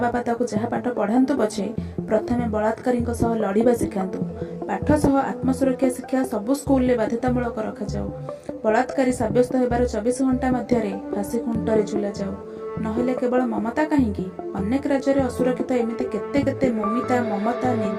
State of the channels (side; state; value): both; identical; correlation 1.00